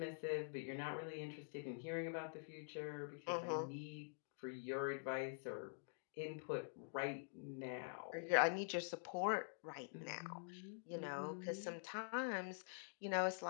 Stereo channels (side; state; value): right; silent; digital silence